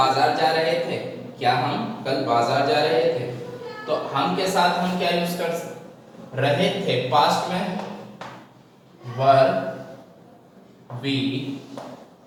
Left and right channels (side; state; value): both; identical; correlation 1.00